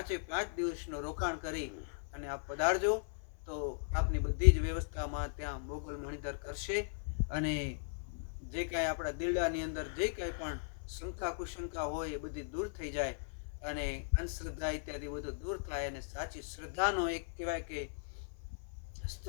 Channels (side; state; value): right; silent; 53 dB below the other